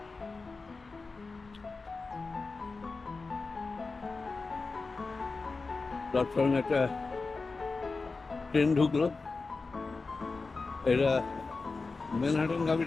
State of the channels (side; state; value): right; quieter; 4.0 dB